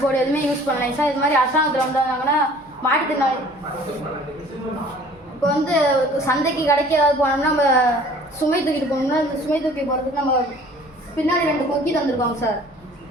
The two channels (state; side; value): normal; both; correlation 0.51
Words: போர்டு எதுவுமே யூஸ் பண்ணலாம் சார். இது மாதிரி அரசாங்கத்தில் வந்தாங்கன்னா மாட்டுத்திறனாளி இப்போ வந்து சந்தைக்கு கடைக்கு ஏதாவது போனோம்னா நம்ம சுமை தூக்கிட்டு போனோம்னா இந்த சுமை தூக்கி போகிறதுக்கு நம்ம பின்னாடி 2 கொக்கி தந்துருக்கோங்க சார்.